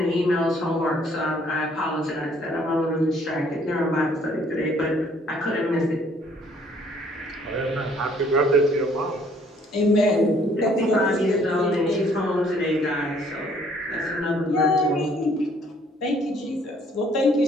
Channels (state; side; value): normal; both; correlation 0.62